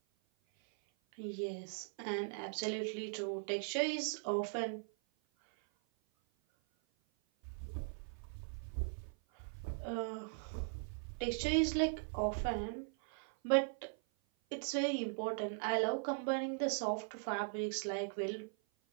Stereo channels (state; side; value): silent; left; 51 dB below the other